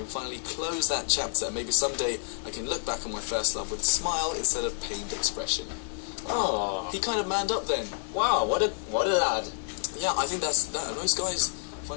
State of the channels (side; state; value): right; silent; 59 dB below the other